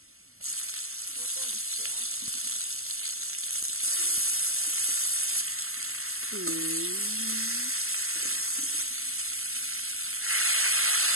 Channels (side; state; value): left; late; 0.62 ms